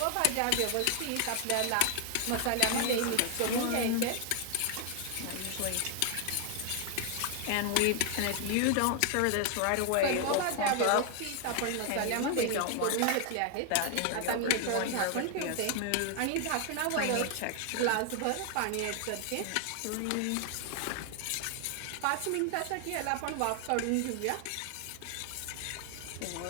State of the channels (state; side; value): different; both; correlation 0.00